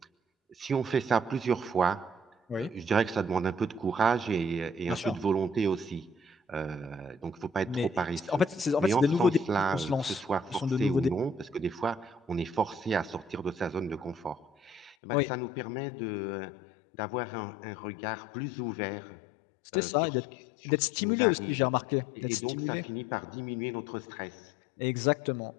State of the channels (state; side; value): drops out; right; at 15.0 s